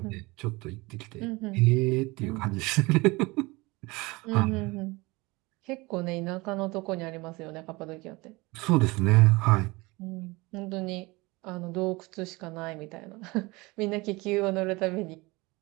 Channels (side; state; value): left; quieter; 23.4 dB